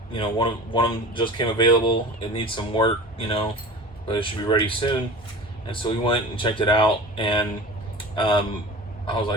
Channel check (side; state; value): both; normal; correlation 0.37